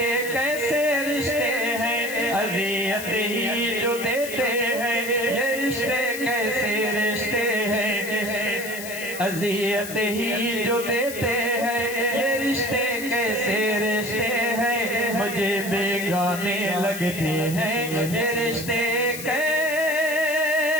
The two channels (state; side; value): noise; left; hiss, 10 dB below the sound